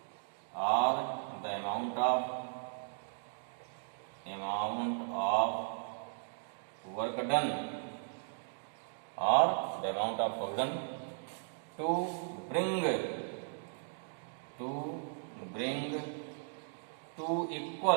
और the amount of work done, और the amount of work done to bring to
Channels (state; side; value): silent; left; digital silence